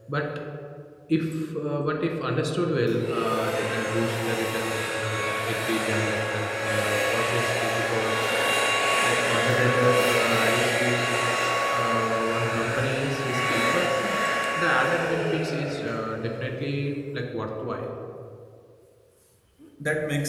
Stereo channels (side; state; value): both; identical; correlation 1.00